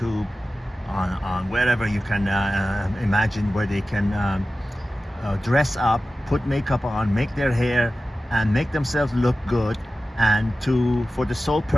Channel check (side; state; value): both; normal; correlation 0.94